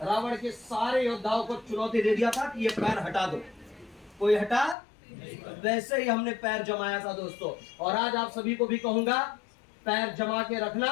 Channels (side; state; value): right; drops out; at 4.8 s